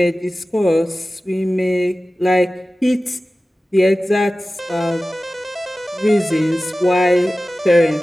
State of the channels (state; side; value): normal; both; correlation 0.96